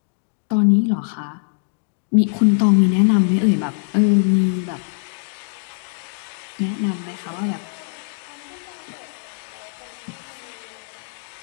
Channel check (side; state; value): right; silent; digital silence